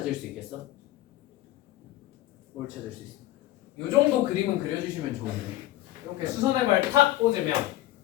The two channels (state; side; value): quieter; right; 15.5 dB